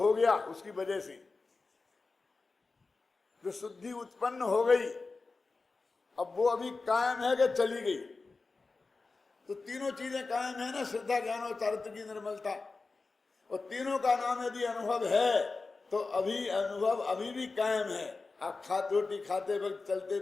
गया, उसकी वजह से जो शुद्धि उत्पन्न हो गई, अब वो अभी कायम है कि चली गई? तो तीनों चीजें कायम है ना, श्रद्धा, ज्ञान और चारित्र की निर्मलता, और तीनों का नाम यदि अनुभव है तो अभी अनुभव अभी भी कायम है। आप रोटी खाते वक्त, चलते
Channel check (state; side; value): quieter; right; 3.9 dB